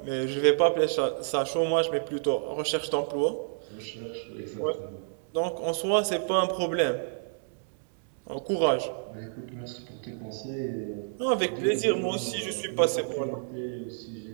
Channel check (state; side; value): silent; left; digital silence